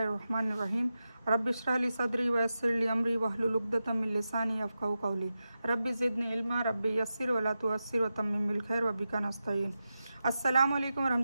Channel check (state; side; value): inverted; both; correlation -0.91